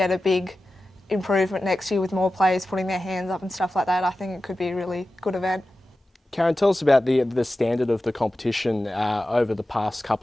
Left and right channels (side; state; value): both; normal; correlation 0.94